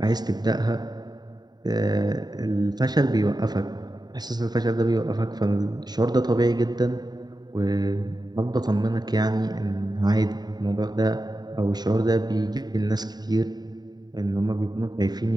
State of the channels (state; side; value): late; left; 0.20 ms